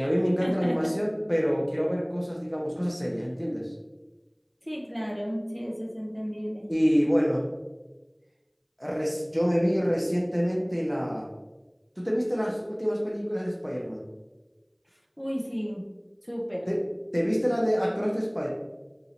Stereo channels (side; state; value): both; identical; correlation 1.00